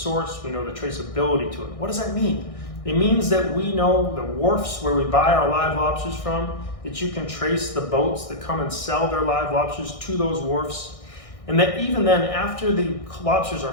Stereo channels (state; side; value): late; right; 1.6 ms